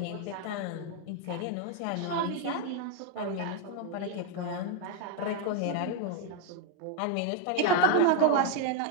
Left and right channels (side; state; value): both; different; correlation 0.00